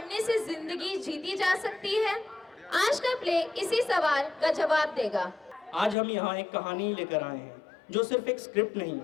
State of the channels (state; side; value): drops out; right; at 6.0 s